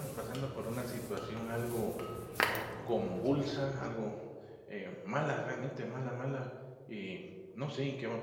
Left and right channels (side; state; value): both; identical; correlation 1.00